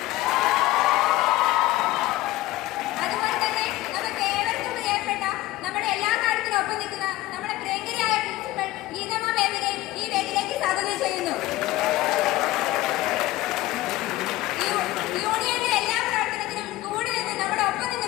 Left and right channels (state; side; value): quieter; right; 17.0 dB